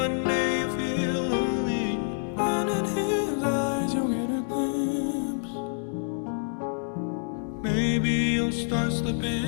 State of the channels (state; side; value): silent; right; digital silence